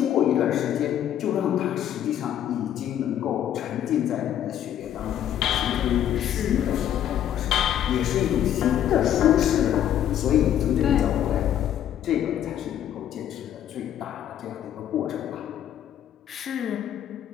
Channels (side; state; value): right; quieter; 10.7 dB